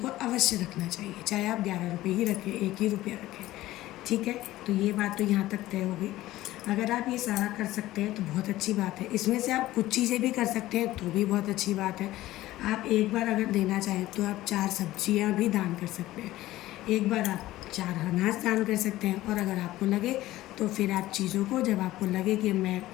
अवश्य रखना चाहिए। चाहे आप 11 रुपये ही रखें, 1 ही रुपया रखें, ठीक है। तो ये बात तो यहाँ तक तय हो गई। अगर आप ये सारा कर सकते हैं तो बहुत अच्छी बात है। इसमें से आप कुछ चीज़ें भी कर सकते हैं तो भी बहुत अच्छी बात है। आप एक बार अगर देना चाहें तो आप 4 सब्जियां भी दान कर सकते हैं, एक बार आप 4 अनाज दान कर सकते हैं, और अगर आपको लगे तो फिर आप चीज़ों को, जब आपको लगे कि मैं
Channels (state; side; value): quieter; right; 16.1 dB